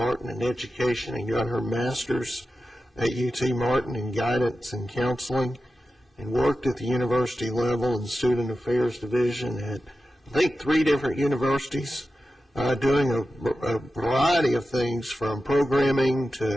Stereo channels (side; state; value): both; normal; correlation 0.92